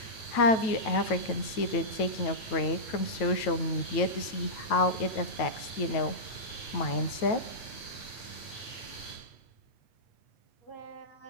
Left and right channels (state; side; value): late; right; 9.1 ms